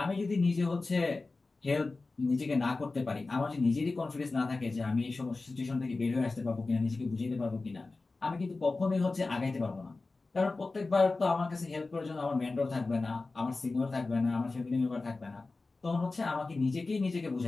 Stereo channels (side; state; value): right; quieter; 3.6 dB